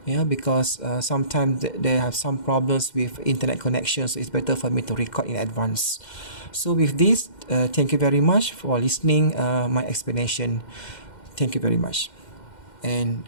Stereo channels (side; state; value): right; late; 2.1 ms